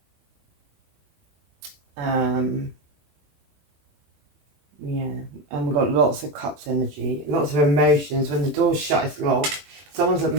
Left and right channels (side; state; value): left; late; 20 ms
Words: Yeah, and we've got lots of cups energy, lots of emotions. When the door's shut, it's locked. Someone's